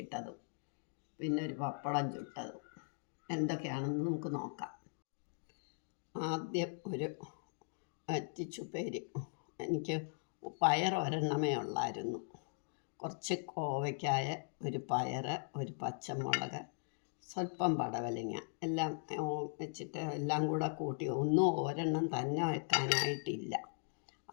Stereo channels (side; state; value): right; silent; digital silence